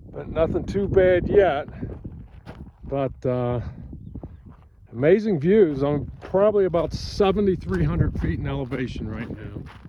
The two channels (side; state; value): both; identical; correlation 1.00